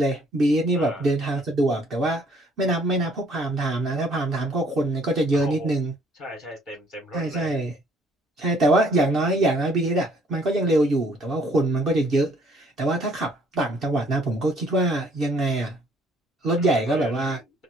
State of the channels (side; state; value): both; normal; correlation 0.62